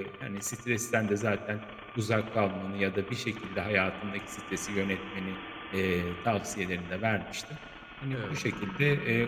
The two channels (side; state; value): both; identical; correlation 1.00